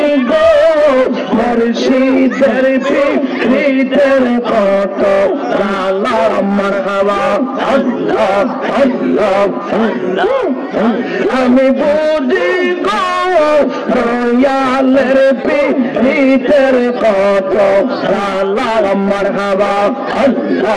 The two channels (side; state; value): both; identical; correlation 1.00